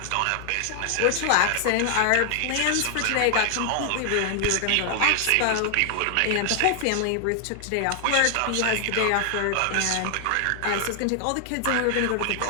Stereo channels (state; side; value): different; both; correlation 0.00